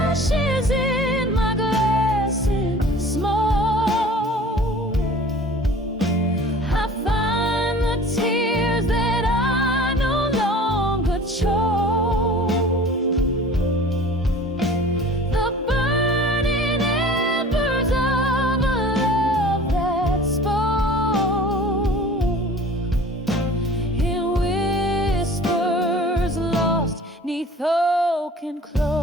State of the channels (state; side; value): normal; both; correlation 0.45